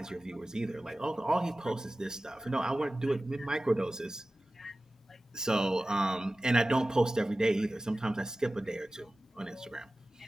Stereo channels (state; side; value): normal; both; correlation 0.96